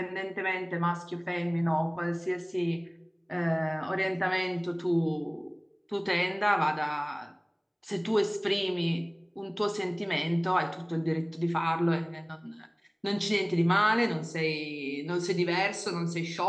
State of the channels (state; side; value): identical; both; correlation 1.00